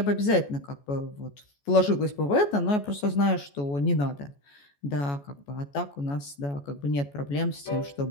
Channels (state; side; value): late; right; 14 ms